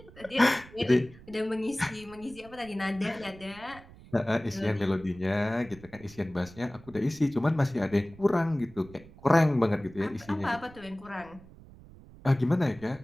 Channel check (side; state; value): right; noise; rumble, 21 dB below the sound